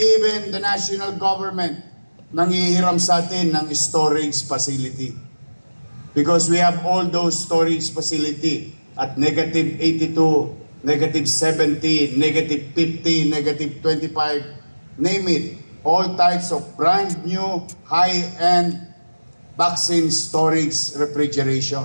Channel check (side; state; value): both; inverted; correlation -1.00